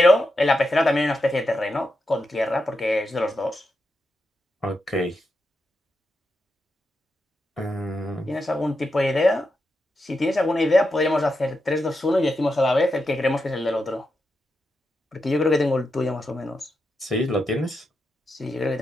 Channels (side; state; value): both; normal; correlation 0.86